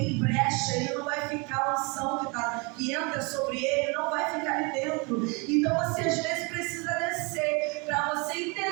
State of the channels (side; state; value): left; quieter; 29.9 dB